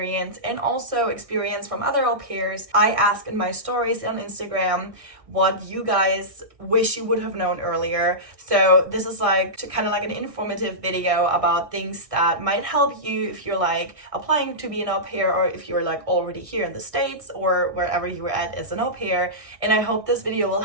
and also experience from other au pairs. I ask in my stories on Instagram what you guys wish you would have known earlier. So this is kind of like an informative video about things that might help you if you're like applying to be an au pair, or if you're like already here in the States or wherever you were at as an au pair. And I hope this video will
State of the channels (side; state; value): left; late; 1.6 ms